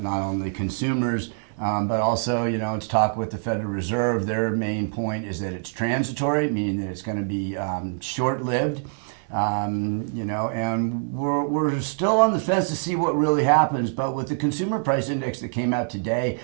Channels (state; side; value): silent; left; 62 dB below the other